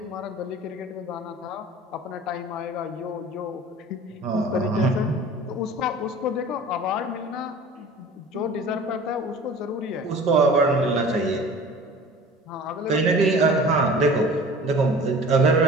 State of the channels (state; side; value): normal; both; correlation 0.42